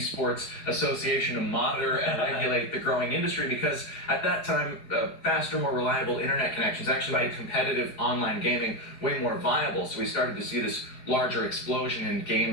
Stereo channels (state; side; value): late; right; 4.8 ms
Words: Association to monitor and regulate the growing industry, because at that time, faster, more reliable internet connections actually made competitive online gaming way more viable. So we started to see this larger explosion in